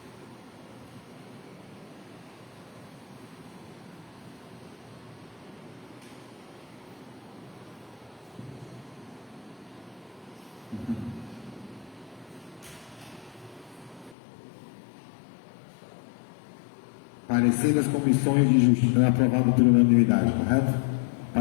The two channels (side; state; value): right; drops out; at 14.2 s